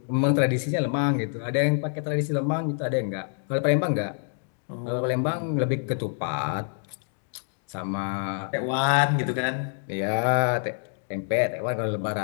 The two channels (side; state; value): right; silent; 60 dB below the other